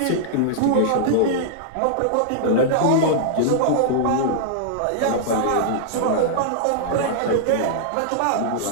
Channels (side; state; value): both; different; correlation -0.02